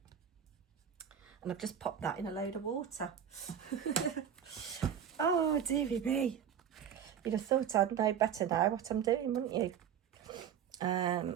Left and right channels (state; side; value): quieter; left; 8.6 dB